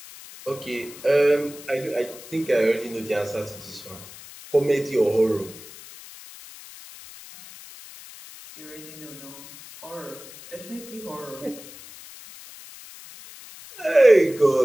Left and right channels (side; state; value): left; noise; hiss, 17 dB below the sound